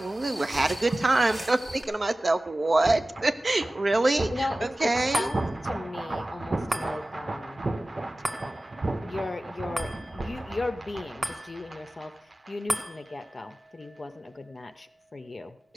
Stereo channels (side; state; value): both; normal; correlation 0.97